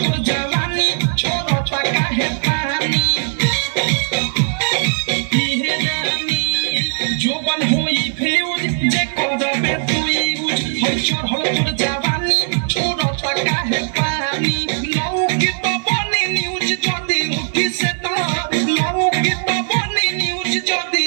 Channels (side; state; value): left; silent; 57 dB below the other